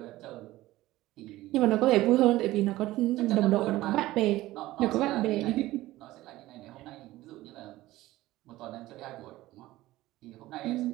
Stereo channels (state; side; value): quieter; left; 16.9 dB